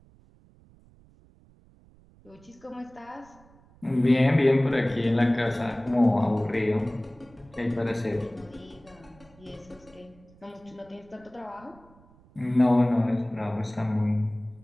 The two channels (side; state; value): right; noise; rumble, 27 dB below the sound